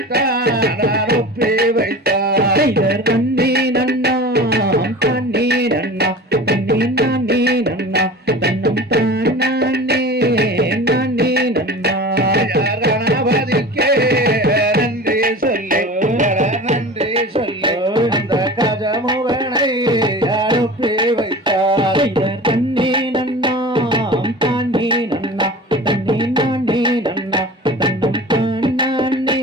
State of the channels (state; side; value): normal; both; correlation 0.36